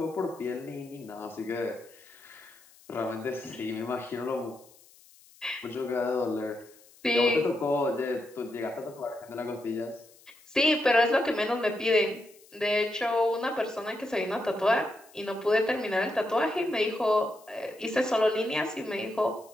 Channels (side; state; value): left; noise; hiss, 26 dB below the sound